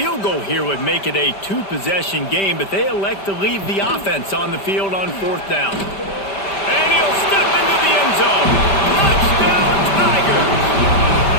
goal here would make it a 2-possession game, but they elect to leave the offense on the field on fourth down. And he'll step into the end zone. Touchdown, Tigers!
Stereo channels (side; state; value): right; late; 5.1 ms